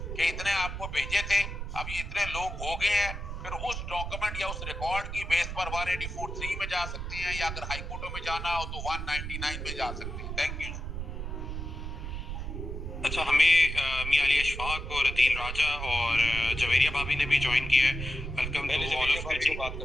कि इतने आपको भेजे थे, अब ये इतने लोग हो गए हैं। फिर उस डॉक्यूमेंट या उस रिकॉर्ड की बेस पर 184(3) में जा सकते हैं, या अगर हाई कोर्टों में जाना हो तो 199 में जा सकते हैं। Thank you. अच्छा, हमें मियां अली अशफाक और अदील राजा और जवेरिया भाभी ने भी ज्वाइन किया है। Welcome to all of you. बात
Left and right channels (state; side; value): noise; right; rumble, 6 dB below the sound